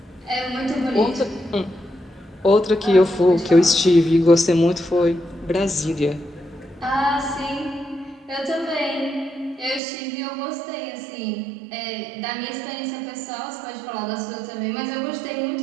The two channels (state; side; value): drops out; left; at 9.8 s